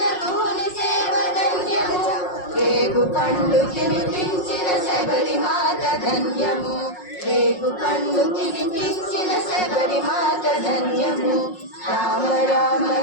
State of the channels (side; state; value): right; late; 5.5 ms